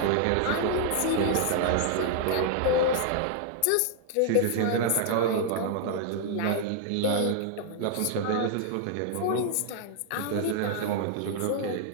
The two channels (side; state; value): both; different; correlation 0.00